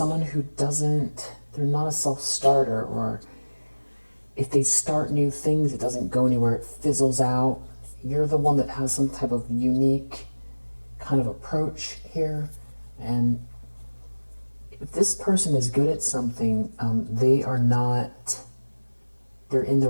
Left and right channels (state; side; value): inverted; both; correlation -1.00